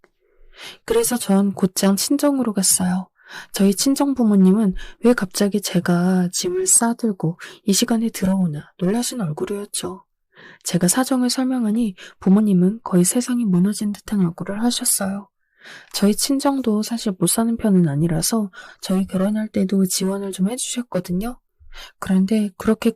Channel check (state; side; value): identical; both; correlation 1.00